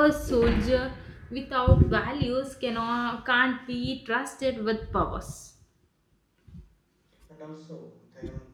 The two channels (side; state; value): both; identical; correlation 1.00